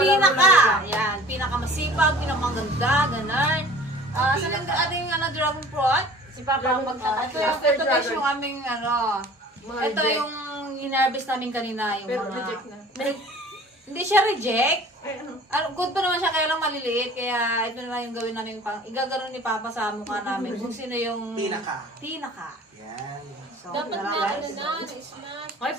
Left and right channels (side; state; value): both; normal; correlation 0.46